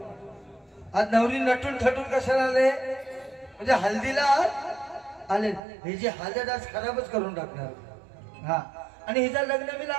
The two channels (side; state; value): left; drops out; at 5.6 s